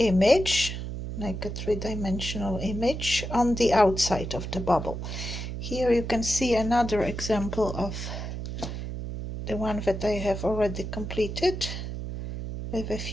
like a three-dimensional image on the outside of the bubble. Here you can see another example of the one that I have already completed with a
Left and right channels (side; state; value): right; noise; hum, 6 dB below the sound